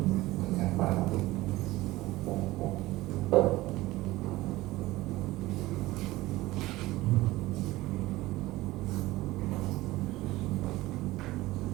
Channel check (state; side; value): quieter; left; 18.4 dB